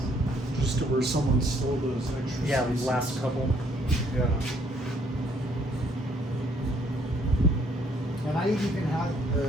Just to where someone stole those extra Yeah, spaces. last couple. Yeah. And I even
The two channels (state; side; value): normal; both; correlation 0.65